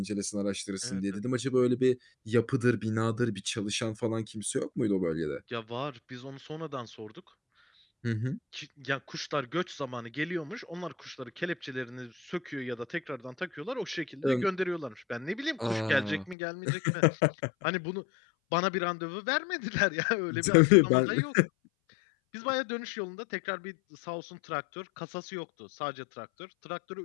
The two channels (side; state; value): right; drops out; at 16.4 s